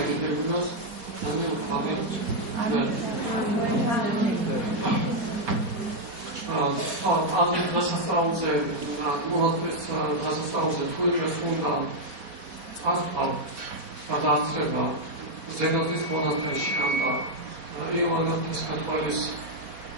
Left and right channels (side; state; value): left; late; 4.1 ms